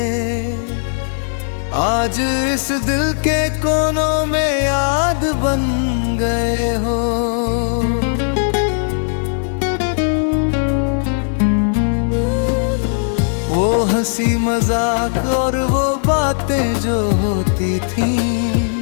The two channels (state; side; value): silent; right; digital silence